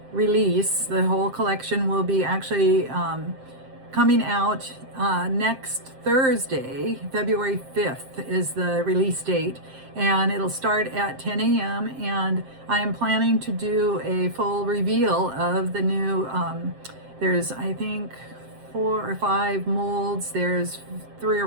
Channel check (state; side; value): late; left; 7.6 ms